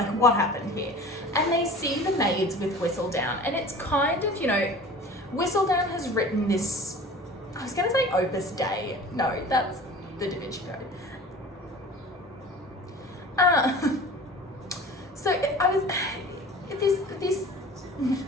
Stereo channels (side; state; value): both; normal; correlation 0.41